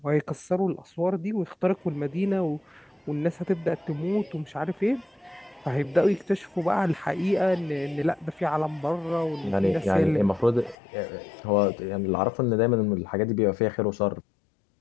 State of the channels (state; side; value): drops out; right; at 10.8 s